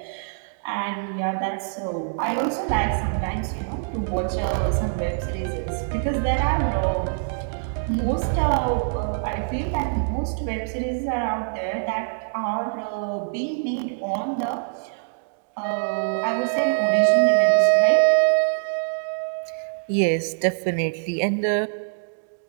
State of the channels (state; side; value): silent; left; digital silence